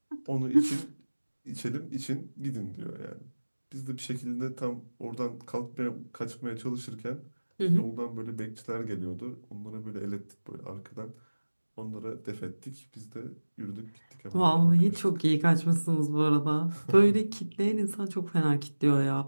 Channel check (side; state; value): both; inverted; correlation -1.00